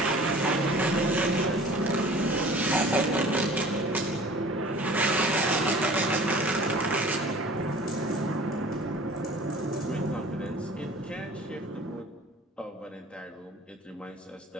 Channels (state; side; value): normal; both; correlation 0.45